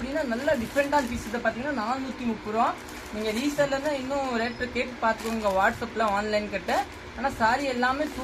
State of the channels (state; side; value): identical; both; correlation 1.00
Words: நல்லா டிஃப்ரெண்டான பீஸ். இதை பார்த்தீங்கன்னா 430 ரூபா. நீங்கள் ரீசெல்லர்னா இன்னும் ரேட்டு கேட்டு பார்த்துக்கோங்க வாட்ஸ்அப்பில் ஆன்லைன் கிட்ட. ஆனால் சாரி எல்லாமே